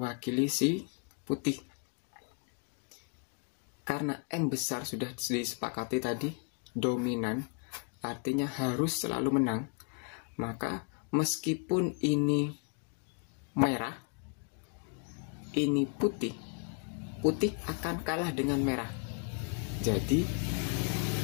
si putih. Karena M besar sudah disepakati tadi dominan, artinya harus selalu menang, maka meskipun ini merah, ini putih akan kalah dengan merah. Jadi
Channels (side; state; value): right; quieter; 35.8 dB